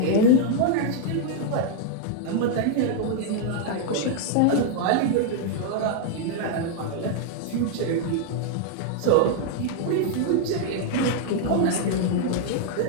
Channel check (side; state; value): both; different; correlation 0.00